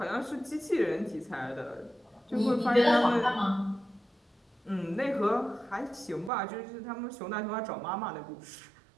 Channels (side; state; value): left; drops out; at 6.3 s